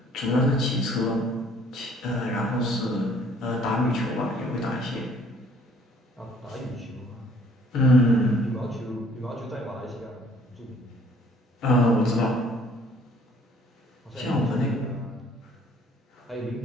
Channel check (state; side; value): normal; both; correlation 0.58